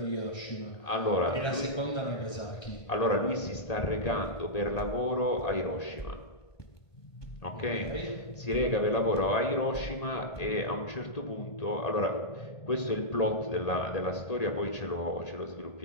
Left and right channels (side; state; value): right; late; 1.5 ms